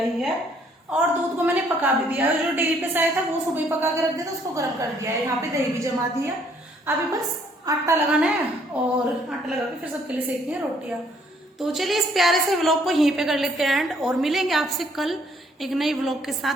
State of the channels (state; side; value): normal; both; correlation 0.65